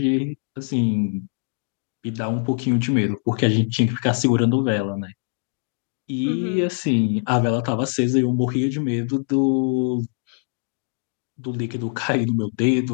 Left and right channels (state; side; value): silent; right; 56 dB below the other